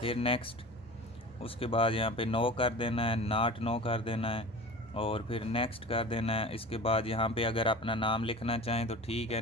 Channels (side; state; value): both; normal; correlation 0.36